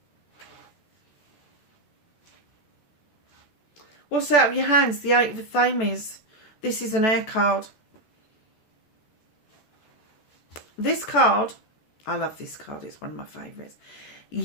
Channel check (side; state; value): right; late; 14 ms